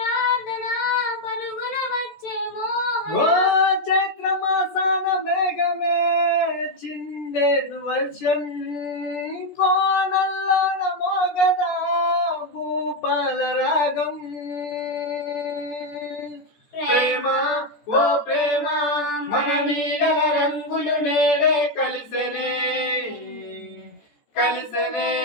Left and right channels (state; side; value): late; right; 14 ms